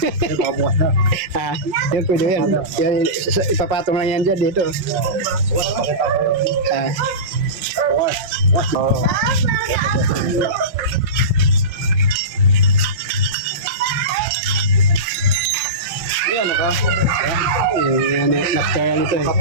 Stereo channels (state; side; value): late; left; 5.5 ms